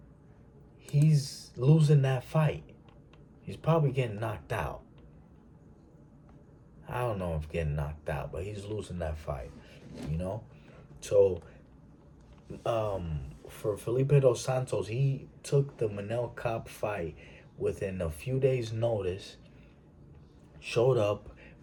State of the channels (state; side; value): identical; both; correlation 1.00